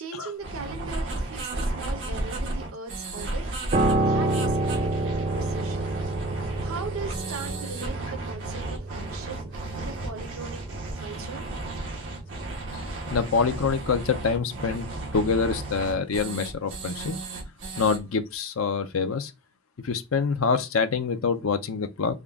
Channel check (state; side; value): normal; both; correlation 0.17